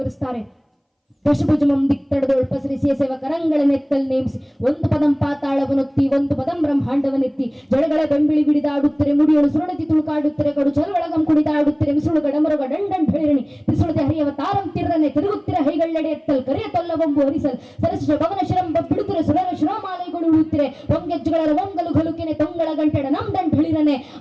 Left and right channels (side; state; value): both; identical; correlation 1.00